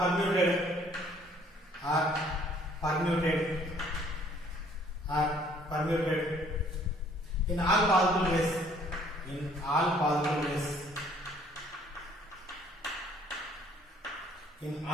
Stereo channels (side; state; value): both; normal; correlation 0.60